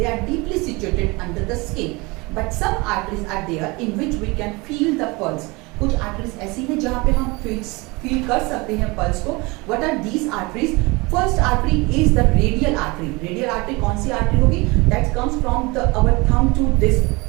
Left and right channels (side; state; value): left; quieter; 25.2 dB